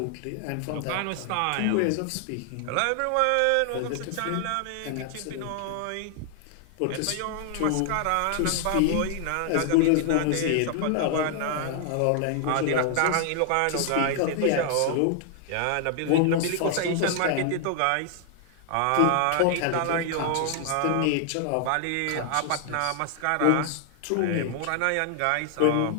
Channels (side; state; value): both; different; correlation 0.00